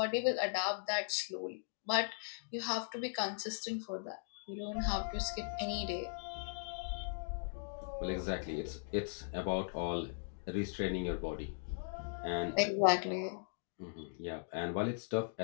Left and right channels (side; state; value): right; silent; digital silence